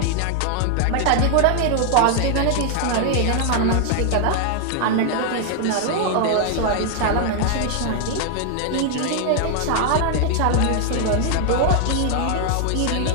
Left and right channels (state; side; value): different; both; correlation 0.00